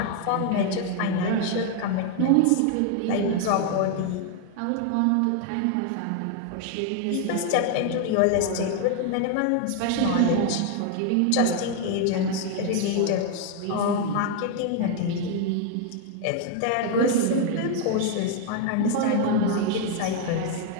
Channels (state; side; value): different; both; correlation 0.00